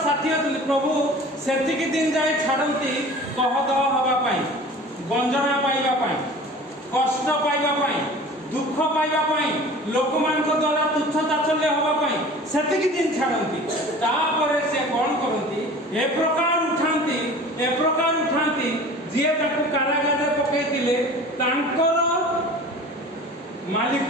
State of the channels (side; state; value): both; normal; correlation 0.42